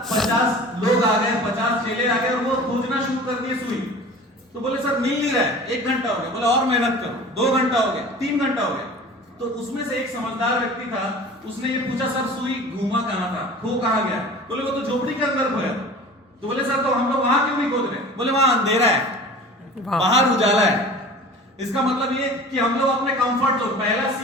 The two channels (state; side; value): normal; both; correlation 0.41